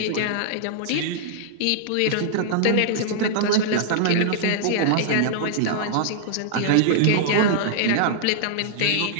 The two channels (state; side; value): different; both; correlation -0.01